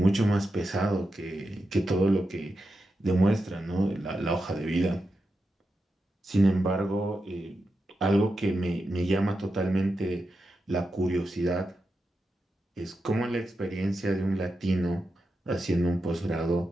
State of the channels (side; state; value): both; normal; correlation 0.88